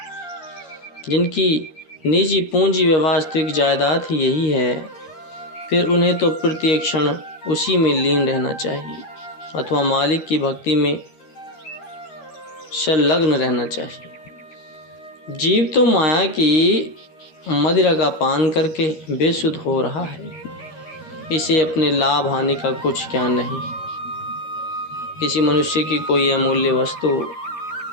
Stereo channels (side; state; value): right; late; 13 ms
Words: जिनकी निजी पूंजी व वास्तविक जायदाद ही यही है, फिर उन्हें तो प्रत्येक क्षण उसी में लीन रहना चाहिए अथवा मालिक की भक्ति में संलग्न रहना चाहिए। जीव तो माया की मदिरा का पान करके बेसुध हो रहा है। इसे अपने लाभ हानि का कुछ ज्ञान नहीं। किसी मनुष्य की कोई अमूल्य वस्तु